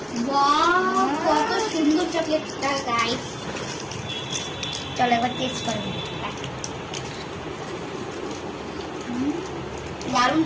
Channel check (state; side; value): identical; both; correlation 1.00